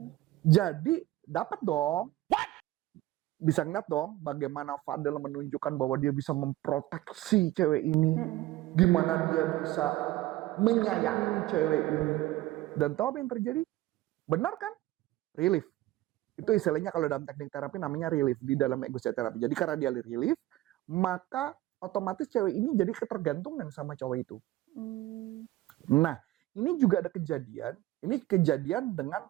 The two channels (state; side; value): quieter; left; 16.7 dB